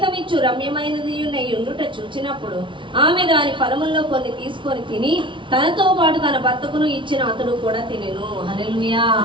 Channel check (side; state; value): left; late; 0.24 ms